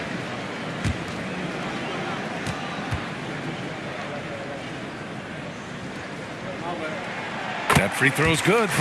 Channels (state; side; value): identical; both; correlation 1.00